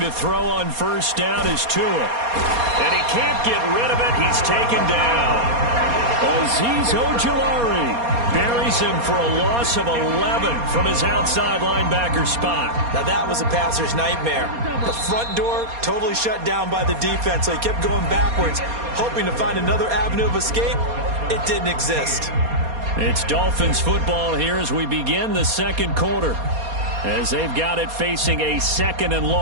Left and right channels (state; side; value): late; left; 4.2 ms